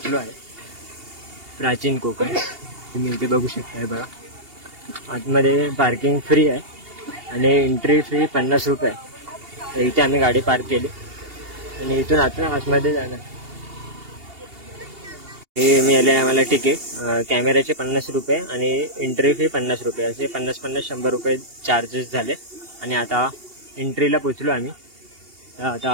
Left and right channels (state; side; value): late; left; 2.8 ms